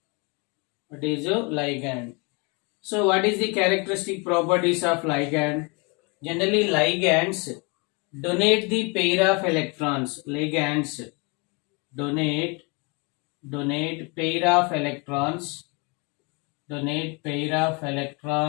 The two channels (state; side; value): quieter; right; 30.7 dB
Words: What is a ligand? So what is the characteristic properties of ligand? Generally ligands donate the pair of electrons. Ligands donate pair of electrons